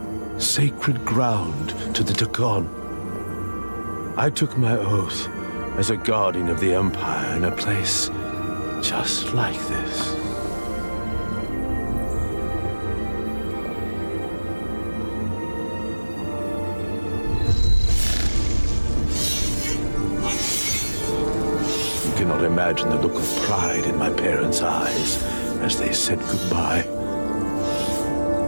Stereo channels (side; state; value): both; inverted; correlation -1.00